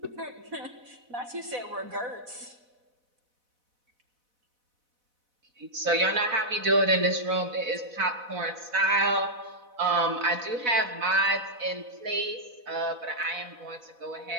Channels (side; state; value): left; late; 4.1 ms